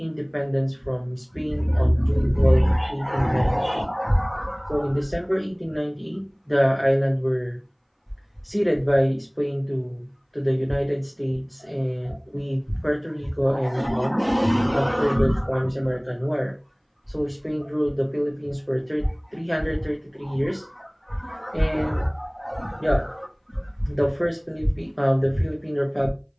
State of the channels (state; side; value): identical; both; correlation 1.00